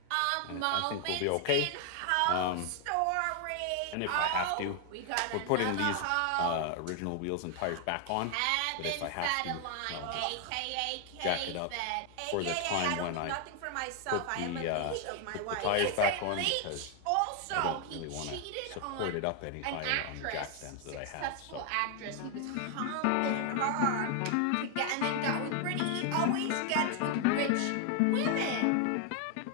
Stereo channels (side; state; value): both; different; correlation 0.00